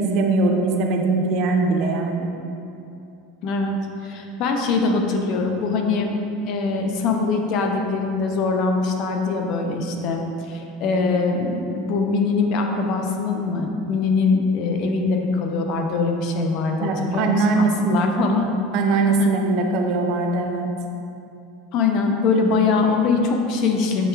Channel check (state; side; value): normal; both; correlation 0.37